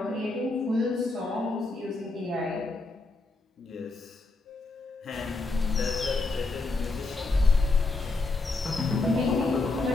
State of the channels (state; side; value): quieter; right; 3.4 dB